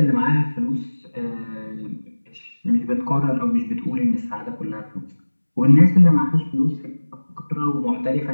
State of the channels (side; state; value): both; inverted; correlation -1.00